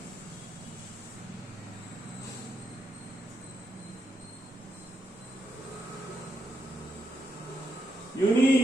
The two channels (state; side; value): normal; both; correlation 0.82